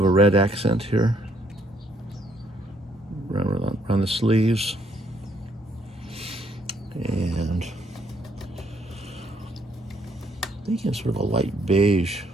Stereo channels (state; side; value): normal; both; correlation 0.69